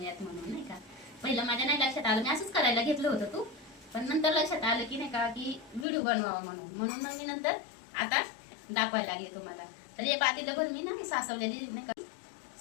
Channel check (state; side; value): drops out; right; at 5.9 s